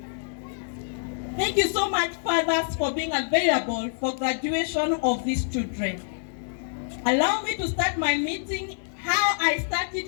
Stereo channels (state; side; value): silent; right; digital silence